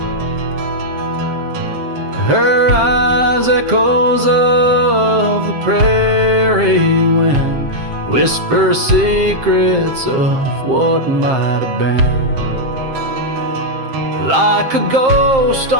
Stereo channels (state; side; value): late; left; 7.6 ms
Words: Her eyes echoes of the prairie wind, whisper secrets of what might have been. Like a ghost